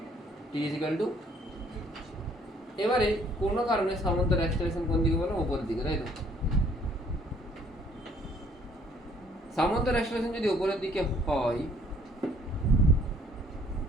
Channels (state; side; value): normal; both; correlation 0.61